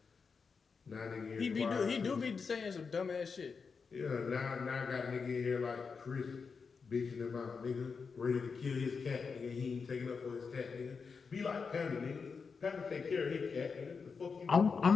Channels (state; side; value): quieter; right; 5.3 dB